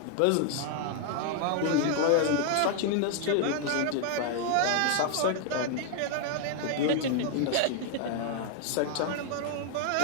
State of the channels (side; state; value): both; different; correlation 0.00